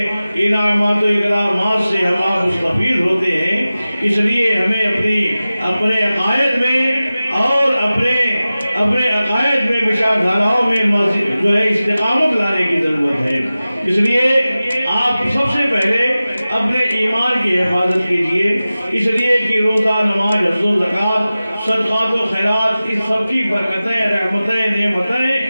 انعامات و اکرامات سے ہم آپ مستفید ہوتے ہیں۔ اس لیے ہمیں اپنے عقائد میں اور اپنے عقائد میں بشار دھاراؤں میں جو ہے استقامت لانے کی ضرورت ہے۔ اس لیے آپ سب سے پہلے اپنے ایمان کی حفاظت کیجئے، اس لیے کہ روزہ، نماز، حج و زکوٰۃ، صدقات و خیرات، اس سب کی برکتیں، رحمتیں،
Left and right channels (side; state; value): both; inverted; correlation -0.96